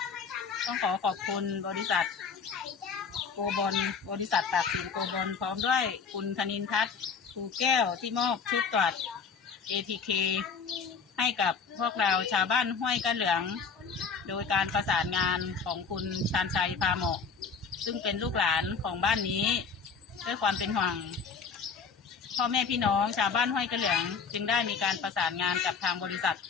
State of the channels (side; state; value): right; quieter; 5.7 dB